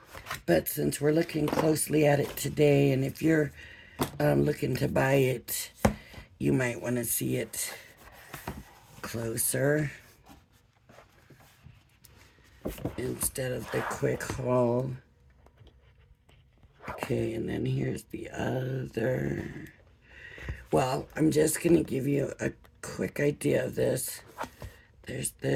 But since we're looking closely at it today, and if you're looking to buy it, you might want to see it closer instead of the quick haul. Okay, and then here's the other. Well, I'm just going to give you a quick idea of this. There's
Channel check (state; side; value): identical; both; correlation 1.00